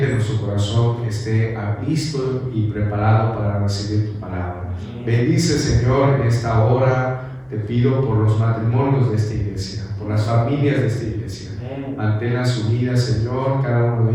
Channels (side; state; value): both; identical; correlation 1.00